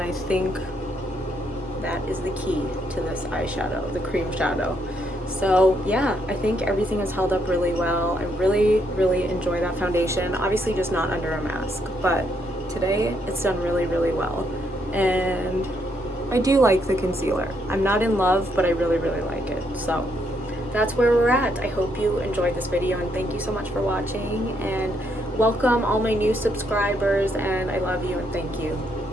think that is the key to this eyeshadow, the cream shadow. So yeah, I think everything has held up really well. I really, really enjoy that foundation. Obviously just not under a mask, but today it's done really, really well. And I do like the concealer. I'm not in love, but I really, really like it. So that's where we're at. I hope you enjoyed this video, and thank you so much for watching, and welcome all my new subscribers, and I love you and thank you.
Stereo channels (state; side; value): noise; left; hum, 24 dB below the sound